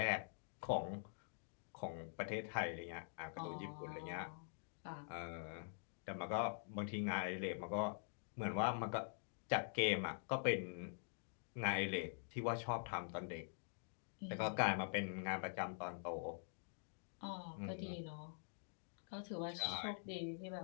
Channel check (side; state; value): right; silent; digital silence